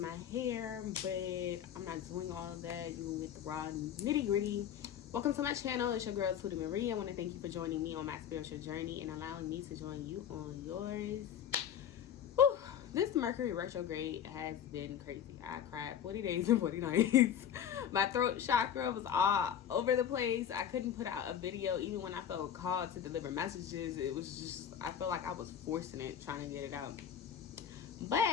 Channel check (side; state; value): right; quieter; 9.2 dB